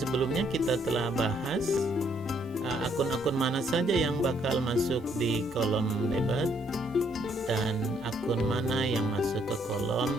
kita telah bahas akun-akun mana saja yang bakal masuk di kolom debit dan akun mana yang masuk ke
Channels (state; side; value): normal; both; correlation 0.69